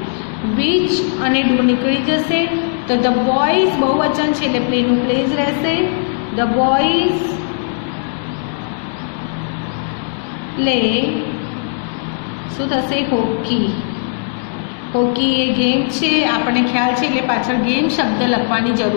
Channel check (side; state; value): right; silent; digital silence